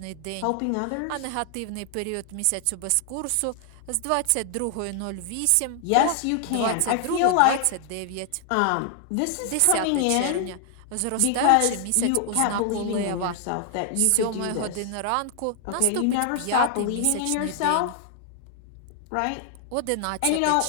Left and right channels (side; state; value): both; different; correlation 0.00